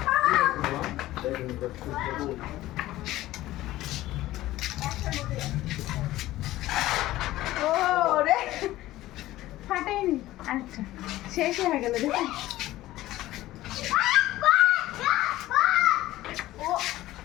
ও রে ফাটাইনি আচ্ছা শেষ হয়ে গেল দেখুন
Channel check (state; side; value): quieter; right; 16.0 dB